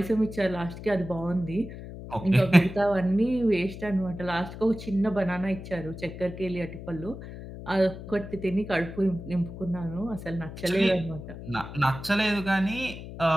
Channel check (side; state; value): left; noise; hum, 12 dB below the sound